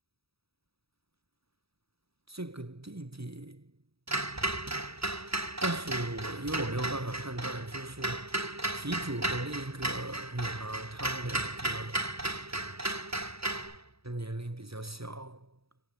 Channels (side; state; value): left; late; 0.77 ms